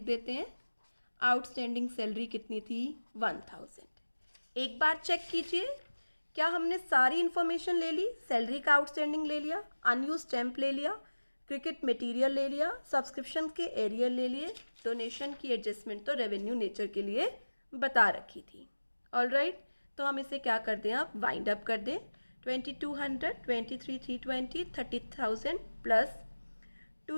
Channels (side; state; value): both; inverted; correlation -1.00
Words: देते हैं। आउटस्टैंडिंग सैलरी कितनी थी, 1000। एक बार चेक कीजिए क्या हमने सारी इन्फॉर्मेशन ले ली। सैलरी का आउटस्टैंडिंग ले लिया, अनयूज स्टैम्प ले लिया, क्रिकेट मटेरियल ले लिया, सब्सक्रिप्शन के एरियर ले लिए, डोनेशन की एडजस्टमेंट तो रेवेन्यू नेचर के लिए बता रखी थी। ऑलराइट, तो हम इसे क्या कर दें, आप वाइंड अप कर दें। 2200, 23,320, 30,000 plus